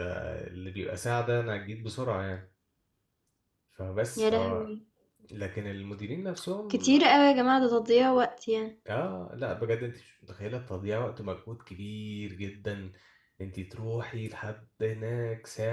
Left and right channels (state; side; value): identical; both; correlation 1.00